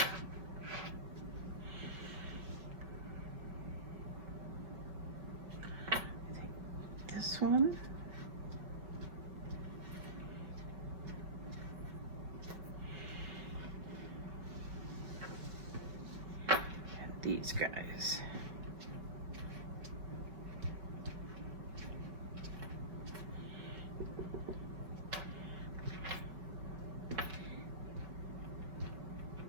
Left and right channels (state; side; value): late; left; 5.3 ms